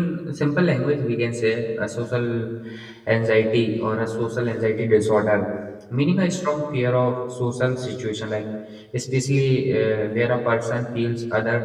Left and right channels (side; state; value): both; identical; correlation 1.00